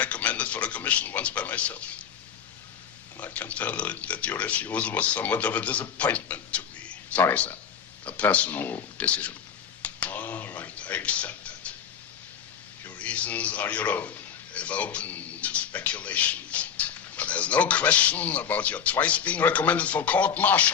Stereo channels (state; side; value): quieter; right; 7.9 dB